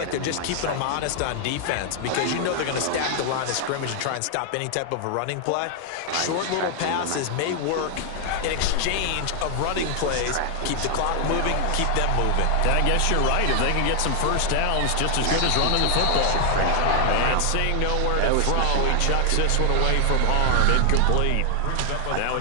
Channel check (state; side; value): different; both; correlation 0.00